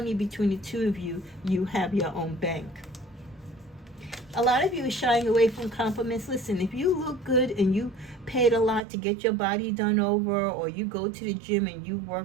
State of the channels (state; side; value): drops out; left; at 8.8 s